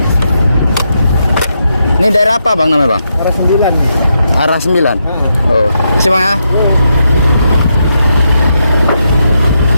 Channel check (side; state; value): both; inverted; correlation -0.82